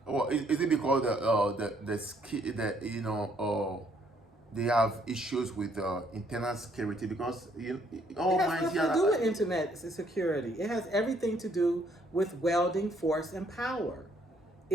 Well, is it because they have issues with internal security? Because it has nothing to do with internet security. It has everything to do with welding force and power.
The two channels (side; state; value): both; normal; correlation 0.67